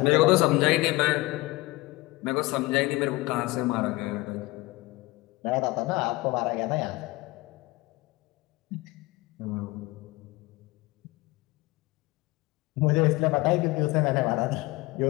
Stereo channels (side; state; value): right; quieter; 21.2 dB